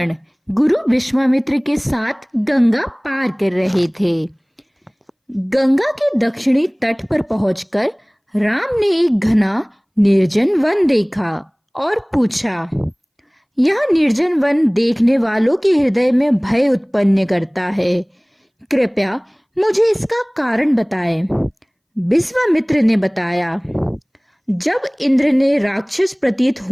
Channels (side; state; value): both; identical; correlation 1.00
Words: गुरु विश्वामित्र के साथ गंगा पार कर रहे थे। गंगा के दक्षिणी तट पर पहुंचकर राम ने एक घना निर्जन वन देखा और पूछा, यह निर्जन वन देखने वालों के हृदय में भय उत्पन्न करता है। कृपया मुझे इसका कारण बताएं। विश्वामित्र ने बताया, जब इंद्र ने राक्षस प्रतीत